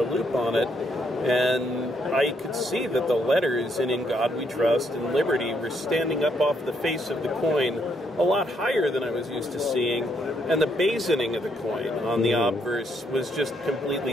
loop on it, and I could see that the letters in God We Trust and Liberty were standing up off the face of the coin a lot higher than I was used to seeing, and the basoning of the coin on the obverse was just completely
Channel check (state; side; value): normal; both; correlation 0.74